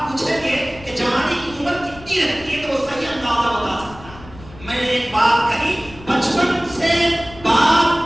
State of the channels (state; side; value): noise; left; rumble, 19 dB below the sound